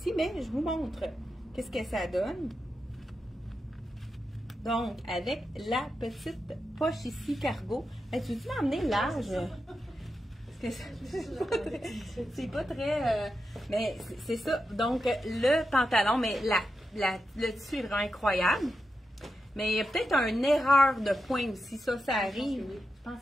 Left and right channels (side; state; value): both; normal; correlation 0.88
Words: Mais je vous montre qu'est-ce que ça donne. Donc, avec la petite poche ici, cargo. Hey, tu veux-tu m'emmener large? C'est pas très... mais c'est ça. Donc, le pantalon, mais le tissu est vraiment incroyable. Mais il y a peut-être une erreur de point aussi. Ça arrive. Je pense